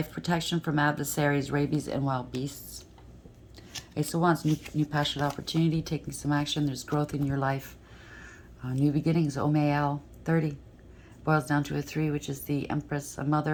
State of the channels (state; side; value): identical; both; correlation 1.00